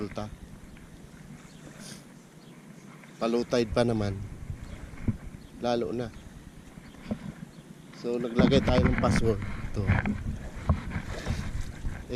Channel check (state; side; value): identical; both; correlation 1.00